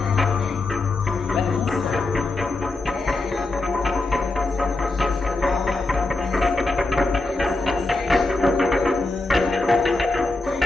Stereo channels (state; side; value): quieter; right; 3.1 dB